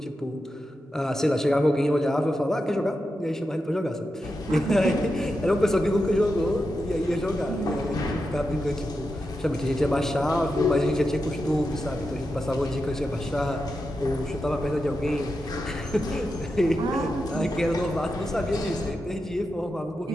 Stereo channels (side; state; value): both; normal; correlation 0.88